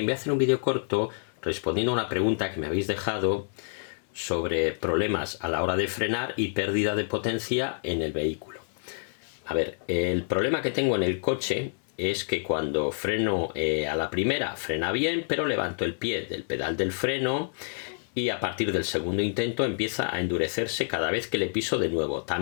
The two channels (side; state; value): right; silent; 59 dB below the other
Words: voy a hacer un vídeo corto respondiendo a una pregunta que me habéis dejado sobre problemas a la hora de frenar y pérdida de potencia en el vehículo. A ver, el problema que tengo en el coche es que cuando freno a la primera frena bien, pero levanto el pie del pedal del freno y a partir del segundo intento empieza a endurecerse cada vez que le piso de nuevo.